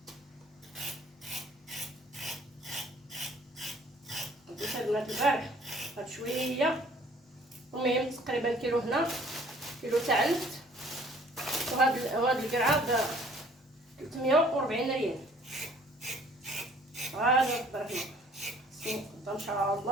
بديت البنات البارح هاد شويه، المهم تقريبا كيلو هنا، كيلو تاع النفط، وهاد القرعه ب 340 ريال. غادي نقدر هنا ان شاء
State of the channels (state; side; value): normal; both; correlation 0.56